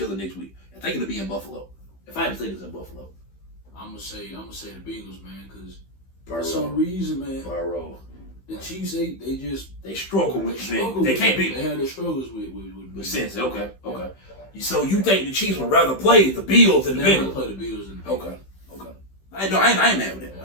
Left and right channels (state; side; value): late; right; 15 ms